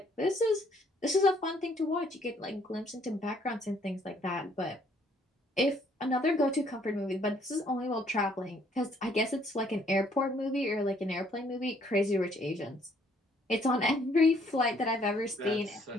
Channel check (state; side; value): normal; both; correlation 0.65